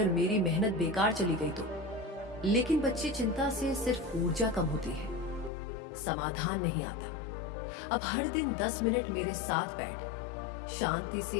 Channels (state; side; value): drops out; right; at 5.5 s